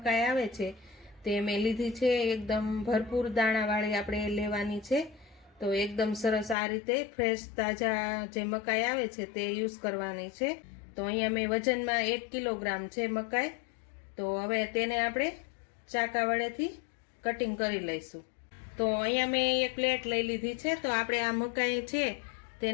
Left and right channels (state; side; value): drops out; right; at 6.6 s